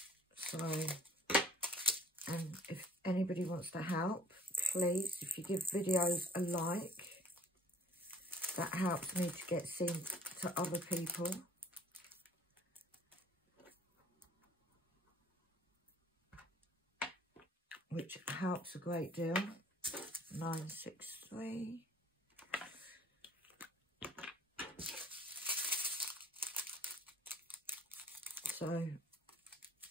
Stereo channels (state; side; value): normal; both; correlation 0.54